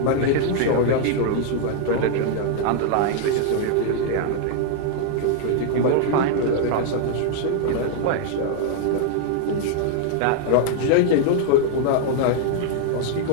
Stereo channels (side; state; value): both; different; correlation 0.00